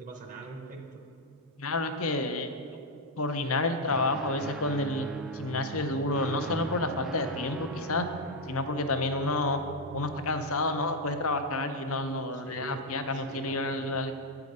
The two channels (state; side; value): normal; both; correlation 0.01